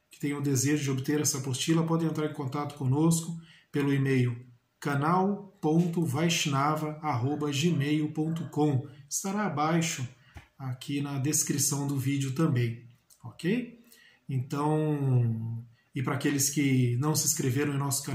que tenham o desejo de obter essa apostila, podem entrar em contato conosco pelo e-mail canal.vaishnava@gmail.com. Estará abaixo aqui na descrição do vídeo também, ok? Então, e para aqueles que não se inscreveram em nosso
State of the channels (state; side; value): identical; both; correlation 1.00